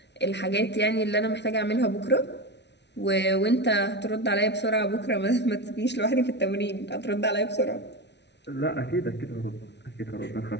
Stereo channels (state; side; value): late; right; 0.50 ms